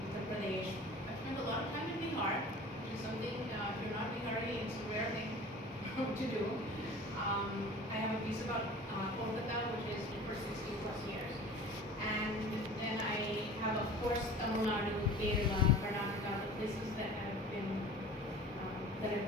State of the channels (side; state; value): both; normal; correlation 0.41